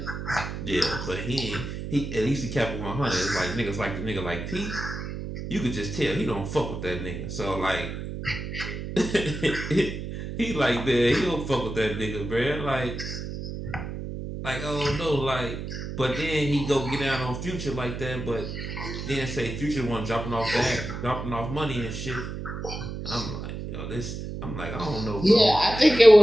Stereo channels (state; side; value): noise; right; hum, 7 dB below the sound